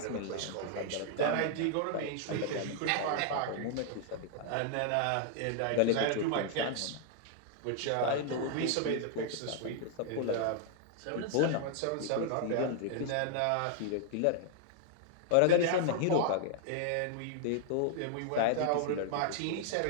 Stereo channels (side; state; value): both; different; correlation -0.01